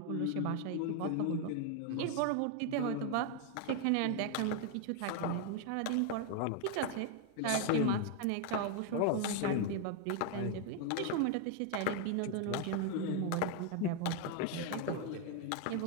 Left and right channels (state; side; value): different; both; correlation 0.01